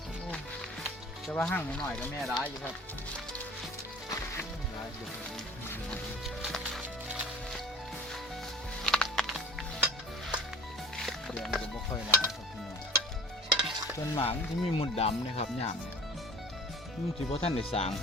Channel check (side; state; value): both; normal; correlation 0.43